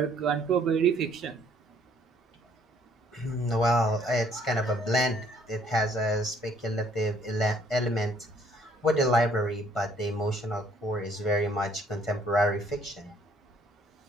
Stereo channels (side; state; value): both; normal; correlation 0.62